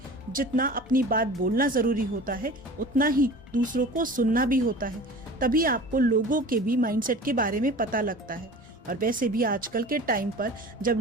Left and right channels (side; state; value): both; normal; correlation 0.39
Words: जितना अपनी बात बोलना जरूरी होता है उतना ही दूसरों को सुनना भी होता है। तभी आपको लोगों के भी माइंडसेट के बारे में पता लगता है। और वैसे भी आजकल के टाइम पर जब